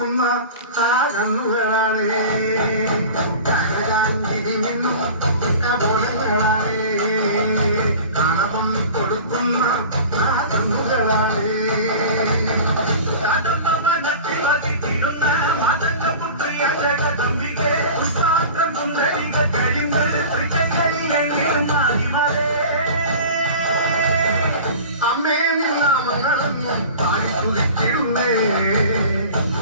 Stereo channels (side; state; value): both; inverted; correlation -0.38